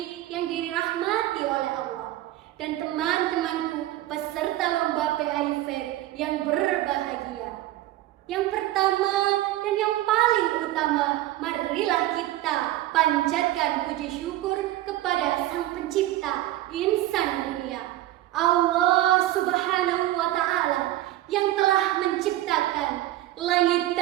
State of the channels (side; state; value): left; quieter; 15.0 dB